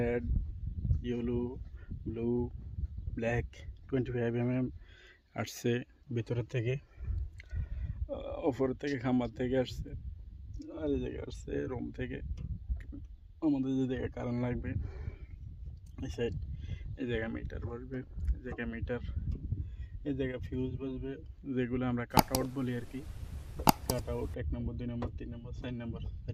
yellow, blue, black 25 mm আসছে ভিতরের থেকে, ওপরের থেকে খাম্বার থেকে আসছে, আর এই জায়গায় আসছে রুম থেকে। আমাদের যে জায়গায় কারেন্ট লাগবে এই সাইড, এই জায়গায় মিটার বসবে, এই জায়গায় মিটার, এই জায়গায় ফিউজ বসবে, যেগুলো আমরা কাট আউট বলি আর কি। কাট আউট 1 নম্বর, 2 নম্বর, 3 নম্বর, 4 নম্বর,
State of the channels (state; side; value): identical; both; correlation 1.00